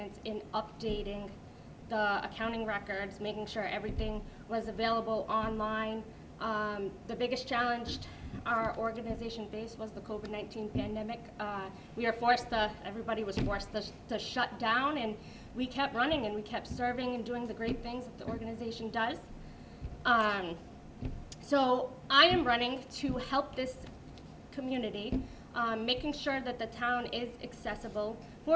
in updating the accounting records, making sure everything was available online. The biggest challenge our organization faced was the COVID-19 pandemic. Everybody was forced to shut down, and we kept running and we kept serving and doing the great things that the organization does. So I am running to help this community, making sure that the town is accessible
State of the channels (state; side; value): identical; both; correlation 1.00